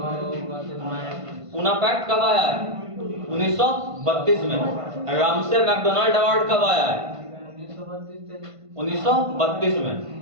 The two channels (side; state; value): left; late; 1.5 ms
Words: पूना पैक्ट कब आया है? 1932 में। रामसे मैकडोनाल्ड अवार्ड कब आया है? 1932 में,